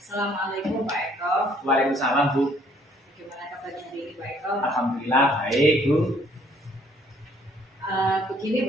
Assalamualaikum Pak Eko. Waalaikumsalam Bu. Bagaimana kabarnya hari ini Pak Eko? Alhamdulillah baik Bu. Begini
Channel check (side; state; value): both; normal; correlation 0.62